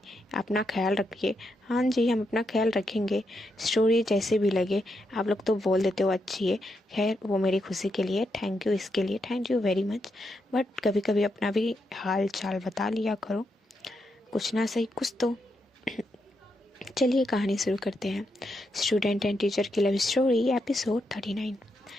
अपना ख्याल रखिए। हाँ जी, हम अपना ख्याल रखेंगे, स्टोरी जैसे भी लगे। आप लोग तो बोल देते हो अच्छी है। खैर, वो मेरी खुशी के लिए थैंक यू, इसके लिए thank you very much. But कभी कभी अपना भी हाल चाल बता लिया करो, कुछ ना सही कुछ तो। चलिए कहानी शुरू करते हैं। स्टूडेंट एंड टीचर की लव स्टोरी एपिसोड 39।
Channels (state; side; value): normal; both; correlation 0.82